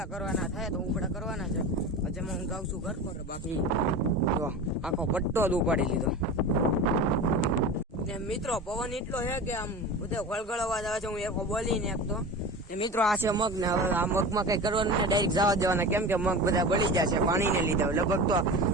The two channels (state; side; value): normal; both; correlation 0.30